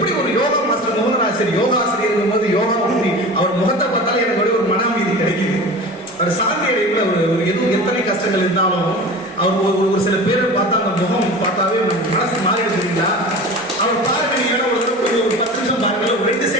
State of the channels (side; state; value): both; normal; correlation 0.35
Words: ஒரு யோகா மாஸ்டர் மோகனாசிரியர் யோகா ஆசிரியர் போது யோகா பண்ணி அவர் முகத்தை பார்த்தாலே எனக்கு ஒரு மன அமைதி கிடைக்குது. அவர் சாந்தி அடைப்புல எதுவும் எத்தனை கஷ்டங்கள் இருந்தாலும் அவர் ஒரு சில பேரை பார்த்தா அந்த முகம் பார்த்தாவே மனசு மாறிடுச்சுங்களா. அவர் பாருங்க, நீங்க ஒரு 10 நிமிஷம் பாருங்க, ஒரு 2